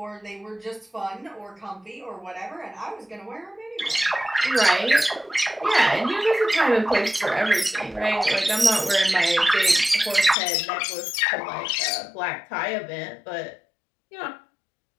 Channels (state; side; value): drops out; right; at 10.4 s